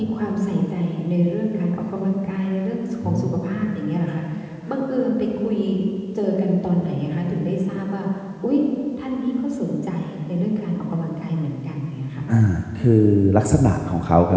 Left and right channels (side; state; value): both; identical; correlation 1.00